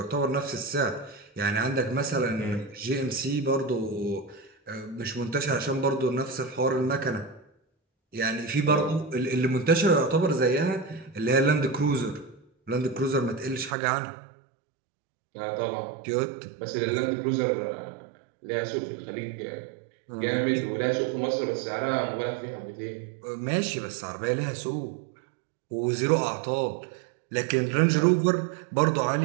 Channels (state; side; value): drops out; left; at 13.8 s